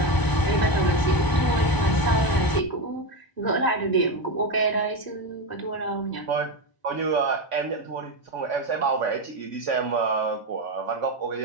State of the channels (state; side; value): late; right; 1.0 ms